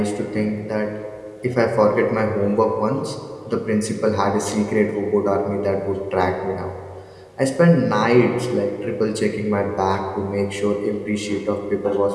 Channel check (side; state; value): both; identical; correlation 1.00